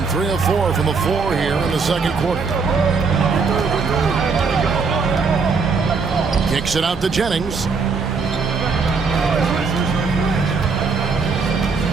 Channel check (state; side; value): quieter; left; 4.9 dB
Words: 3 of 4 from the floor here in the second quarter. Kicks it out to Jennings.